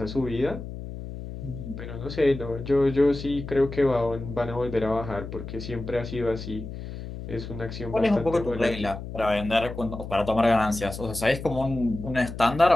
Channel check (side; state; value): left; noise; hum, 9 dB below the sound